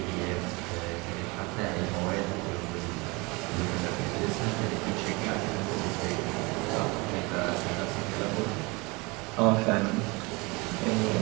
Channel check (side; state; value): left; quieter; 26.3 dB